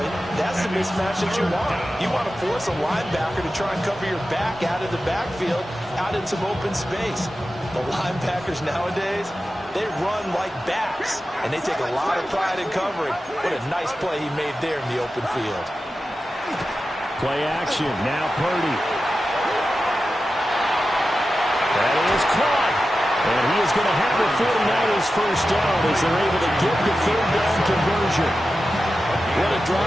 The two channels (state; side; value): normal; both; correlation 0.93